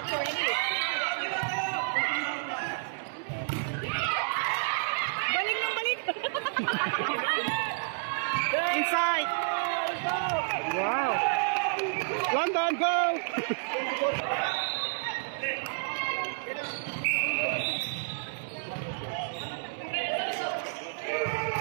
Balik ng balik! Inside! Wow! London, go!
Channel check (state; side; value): silent; left; digital silence